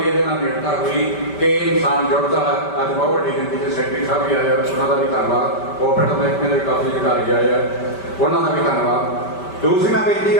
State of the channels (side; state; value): right; late; 5.1 ms